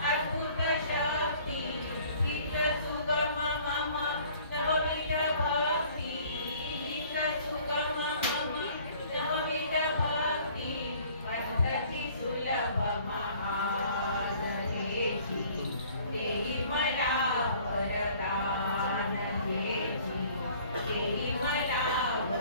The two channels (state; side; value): inverted; both; correlation -0.54